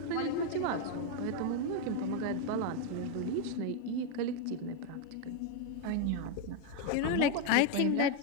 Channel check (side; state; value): both; different; correlation 0.01